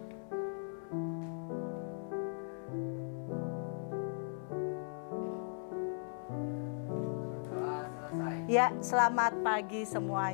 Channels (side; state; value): right; silent; 53 dB below the other